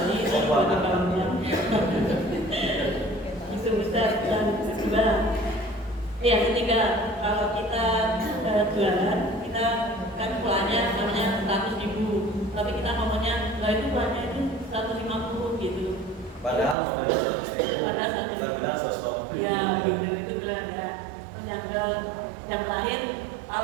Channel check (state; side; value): drops out; left; at 16.8 s